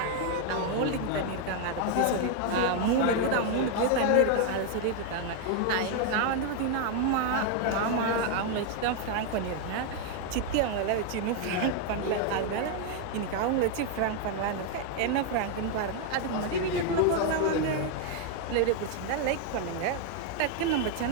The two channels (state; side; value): different; both; correlation 0.00